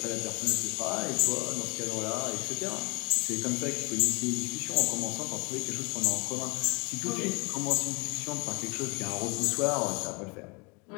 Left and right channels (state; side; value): quieter; right; 29.7 dB